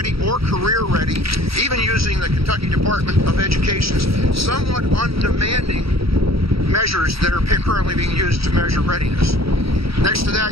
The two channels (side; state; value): left; late; 0.76 ms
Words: or career ready, even using the Kentucky Department of Education's somewhat undemanding measures that are currently being used to measure readiness. Next to